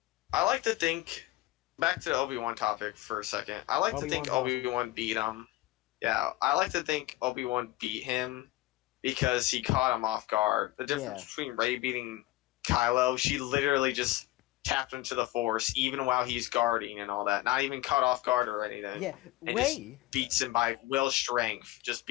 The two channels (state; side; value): quieter; right; 17.4 dB